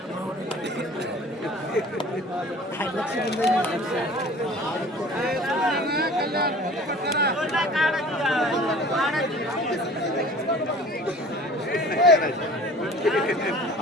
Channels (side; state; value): both; normal; correlation 0.45